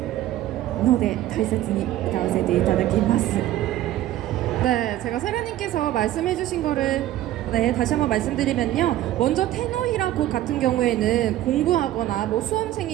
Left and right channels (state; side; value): quieter; left; 14.0 dB